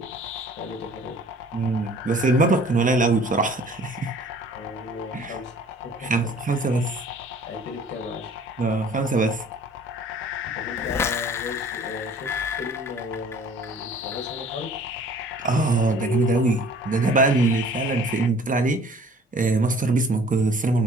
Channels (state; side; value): normal; both; correlation 0.51